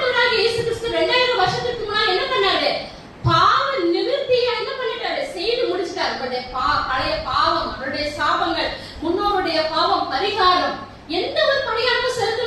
இயேசு கிறிஸ்து 2000 வருஷத்துக்கு முன்னாடி என்ன பண்ணாரு, பாவ நிவர்த்தியை என்ன பண்ணிட்டாரு, செய்து முடிச்சிட்டாரு. பழைய பாவம், அவருடைய சாபங்கள், முன்னோருடைய பாவம் பரிகாரம், எந்த ஒரு பரிகாரம்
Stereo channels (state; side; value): identical; both; correlation 1.00